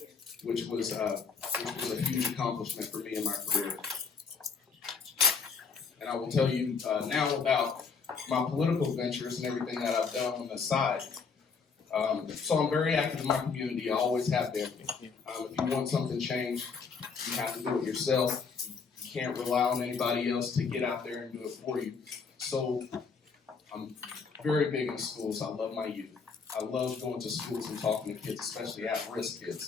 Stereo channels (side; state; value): right; quieter; 5.3 dB